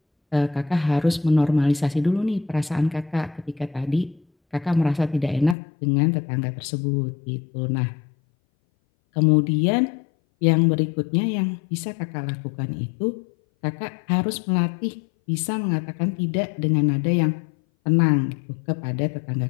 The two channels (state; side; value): drops out; right; at 5.6 s